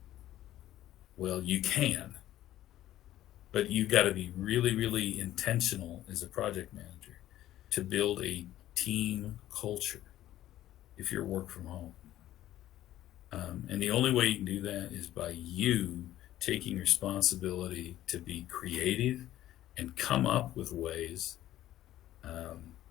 well, you can, but you've got to be really, really intentional as a project manager to build a team culture if you're work from home. And the only way you can do that is by you taking responsibility to be creative and come up with ways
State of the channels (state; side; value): quieter; right; 13.6 dB